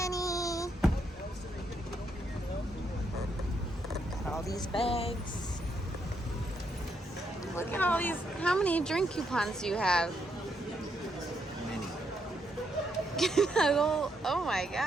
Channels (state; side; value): normal; both; correlation 0.77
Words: All these bags. Look at all these. How many drink coupons do you have? Many. Oh my